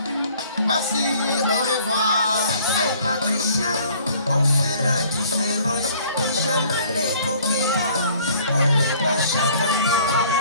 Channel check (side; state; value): both; inverted; correlation -0.55